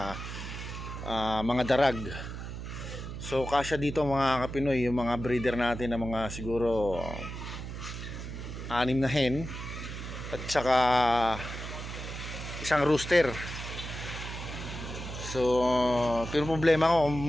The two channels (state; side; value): noise; right; hum, 8 dB below the sound